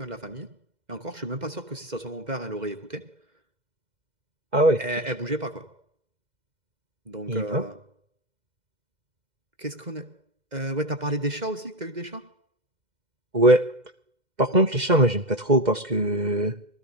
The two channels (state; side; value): late; left; 2.1 ms